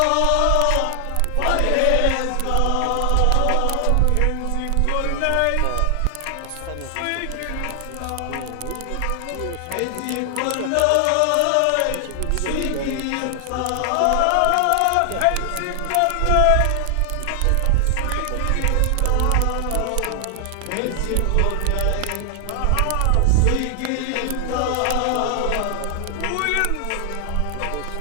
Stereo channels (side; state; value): both; different; correlation 0.00